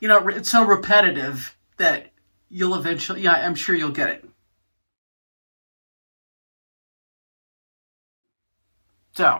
know, it's so repetitive that you'll eventually, yeah, I'm sure you'll get it.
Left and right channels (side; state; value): both; inverted; correlation -1.00